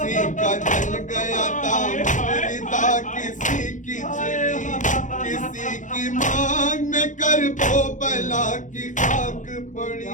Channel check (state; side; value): late; right; 0.36 ms